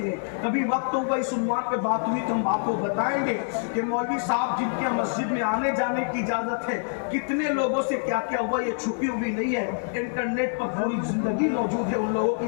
لیں۔ کبھی وقت ہوگا اس عنوان پہ بات ہوئی تو ہم آپ کو بتائیں گے کہ مولوی صاحب جن کے مسجد میں آنے جانے کی اجازت ہے کتنے لوگوں سے کیا کیا ہوا، یہ چھپی ہوئی نہیں ہے، انٹرنیٹ پر پوری زندگی موجود ہے۔ ان لوگوں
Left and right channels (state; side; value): silent; right; digital silence